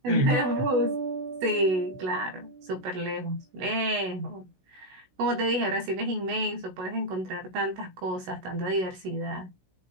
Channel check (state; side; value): late; left; 16 ms